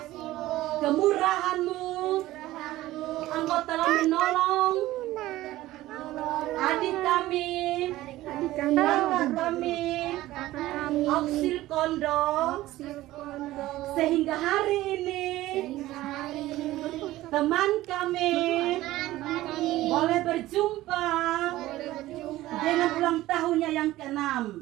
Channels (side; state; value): left; quieter; 16.3 dB